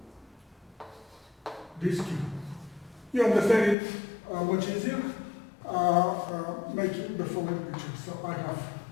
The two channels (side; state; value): right; drops out; at 3.8 s